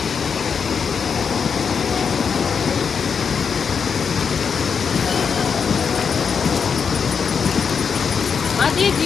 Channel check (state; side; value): quieter; right; 6.3 dB